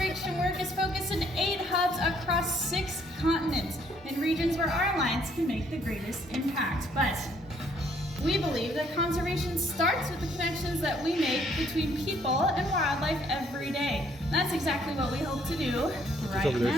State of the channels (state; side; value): normal; both; correlation 0.65